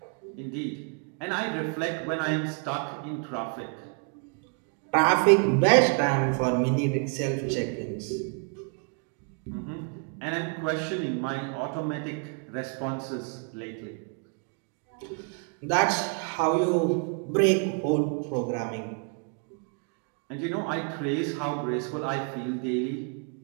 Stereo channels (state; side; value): quieter; left; 39.1 dB